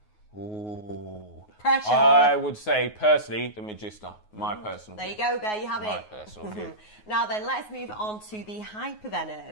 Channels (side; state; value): right; late; 9.4 ms